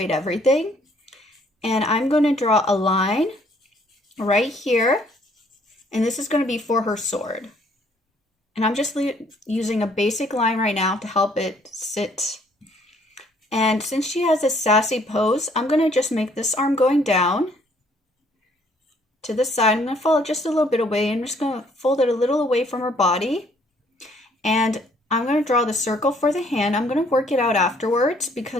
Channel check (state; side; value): normal; both; correlation 0.63